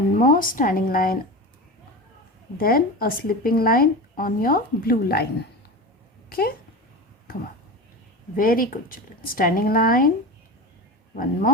more standing line, then a sleeping line on your blue line. Okay? Come on. Very good children. Standing line, one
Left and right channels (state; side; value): normal; both; correlation 0.27